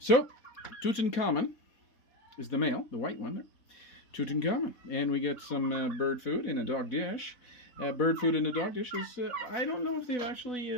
Tutankamen is the male, the white one there. Tutankamen. And we get some bird food in a dog dish. Bird food in a dog dish is, I don't know if they've actually,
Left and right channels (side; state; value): right; late; 4.2 ms